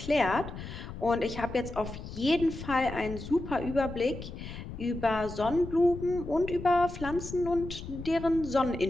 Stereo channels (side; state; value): left; noise; rumble, 10 dB below the sound